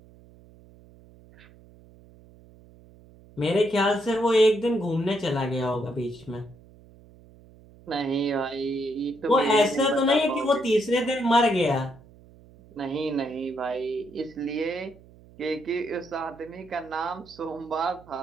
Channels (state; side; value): noise; right; hum, 24 dB below the sound